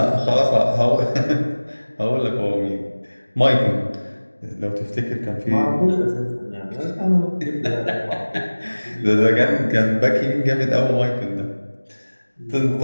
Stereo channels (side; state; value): both; inverted; correlation -1.00